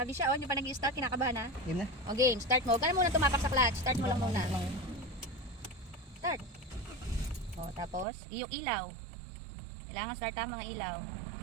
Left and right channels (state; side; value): drops out; left; at 8.1 s